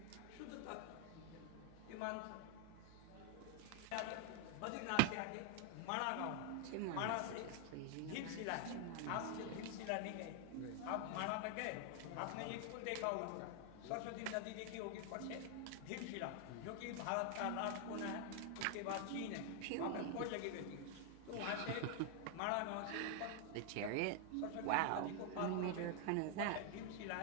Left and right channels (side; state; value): both; different; correlation 0.00